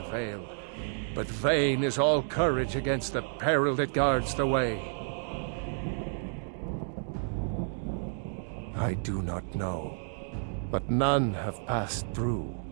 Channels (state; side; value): silent; left; digital silence